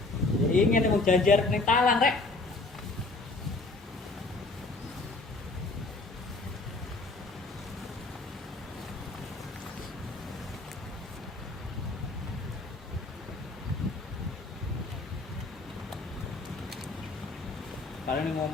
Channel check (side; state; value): right; quieter; 3.2 dB